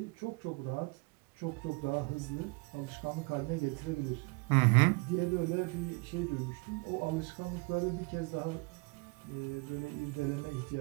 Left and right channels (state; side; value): quieter; left; 30.0 dB